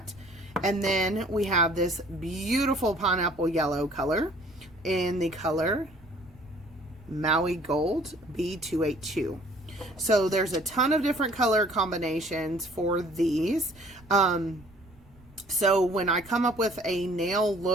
And then we have this beautiful pineapple yellow color in the color Maui Gold B282. So there's a ton of different color combinations for these. So when I come up with a nail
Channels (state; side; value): noise; right; rumble, 26 dB below the sound